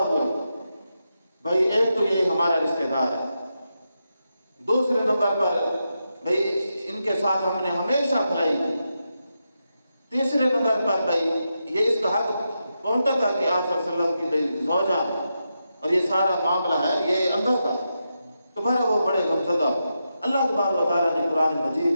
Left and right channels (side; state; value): both; inverted; correlation -0.87